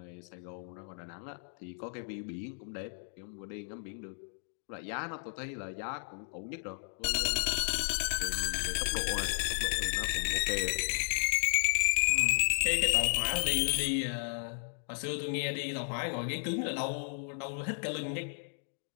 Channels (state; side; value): silent; right; digital silence